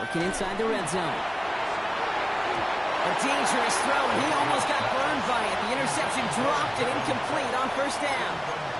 inside the red zone. A dangerous throw, and he almost got burned by it. The interception dropped and incomplete on first down.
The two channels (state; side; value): identical; both; correlation 1.00